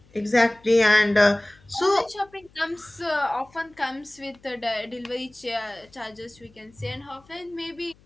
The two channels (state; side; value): noise; left; hum, 29 dB below the sound